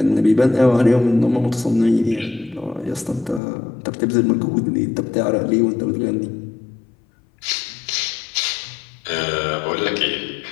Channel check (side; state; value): right; drops out; at 3.4 s